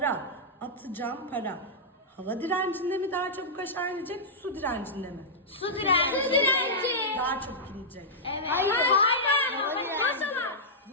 atacağım para hava direncinde mi daha çabuk aşağı inecek, su direncinde mi? Su direnci. Daha çabuk inecek. Evet. Hayır. Maşallah.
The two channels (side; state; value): both; normal; correlation -0.11